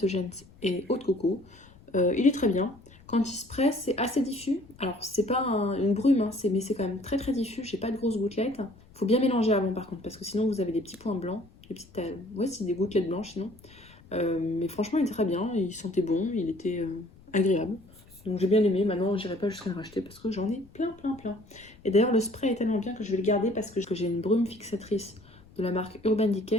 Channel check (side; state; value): left; noise; rumble, 24 dB below the sound